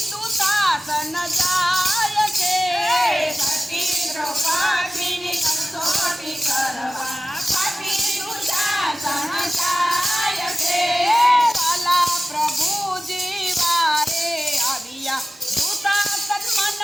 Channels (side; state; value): both; normal; correlation 0.96